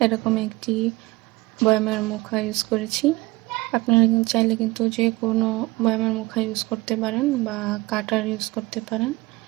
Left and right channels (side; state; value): left; quieter; 21.9 dB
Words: এরকম একটি বয়ামের মুখা ইউজ করেছি। আপনারা চাইলে কিন্তু যে কোনো বয়ামের মুখা ইউজ করতে পারেন বা কাটার ইউজ করতে পারেন।